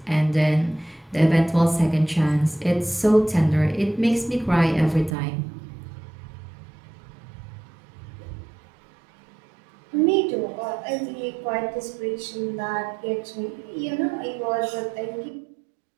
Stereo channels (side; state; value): left; drops out; at 5.2 s